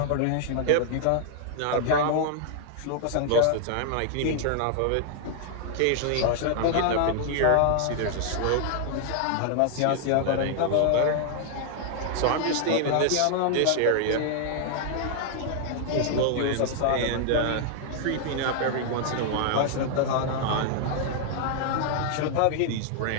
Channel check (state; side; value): different; both; correlation 0.00